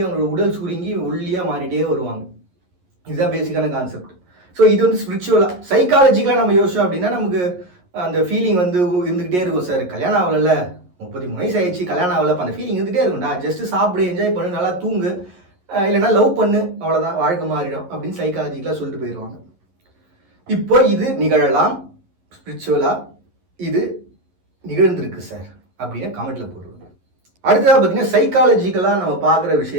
அவங்களோட உடல் சுருங்கி ஒல்லியாக மாறிட்டே வருவாங்க. இதுதான் பேசிக்கான கான்செப்ட். ஸோ இது வந்து ஸ்பிரிச்சுவலாக, சைக்காலஜிக்கலாக நம்ம யோசிச்சோம் அப்படின்னா நமக்கு அந்த ஃபீலிங் வந்து இருந்துக்கிட்டே இருக்கும். சார் கல்யாணம் ஆகலைல்ல, 33 வயசு ஆயிடுச்சு, கல்யாணம் ஆகலை, அந்த ஃபீலிங் இருந்துகிட்டே இருக்கும்டா, ஜஸ்ட்டு சாப்பிடு, என்ஜாய் பண்ணு, நல்லா தூங்கு, இல்லைனா லவ் பண்ணு, அவ்வளோதான், வாழ்க்கை மாறிடும் அப்படின்னு சைக்காலஜிக்கலாக சொல்லிட்டு போயிடுவாங்க. இப்போ இது நிகழலாம், ஸ்பிரிச்சுவலாக இது நிகழ்ந்திருக்கு சார் அப்படின்னு கமெண்ட்டில் போடுவாங்க. அடுத்ததாக பார்த்தீங்கன்னா சைக்காலஜிக்கலாக நம்ம பார்க்குற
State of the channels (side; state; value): left; late; 11 ms